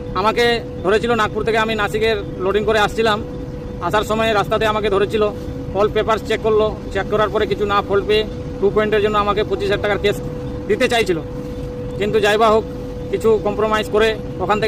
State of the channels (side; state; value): both; identical; correlation 1.00